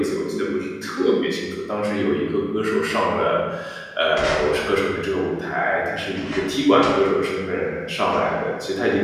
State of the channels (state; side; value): identical; both; correlation 1.00